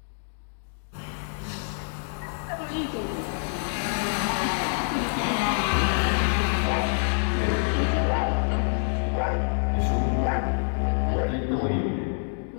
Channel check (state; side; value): silent; right; digital silence